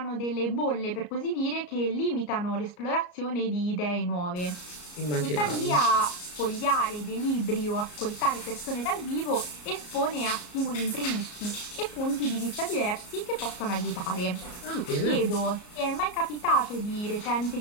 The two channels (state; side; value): late; right; 34 ms